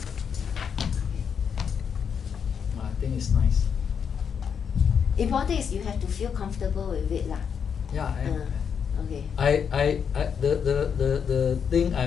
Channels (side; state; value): right; quieter; 7.1 dB